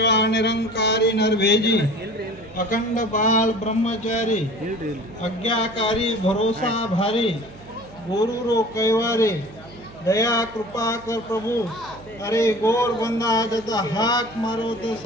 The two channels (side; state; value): right; noise; hum, 20 dB below the sound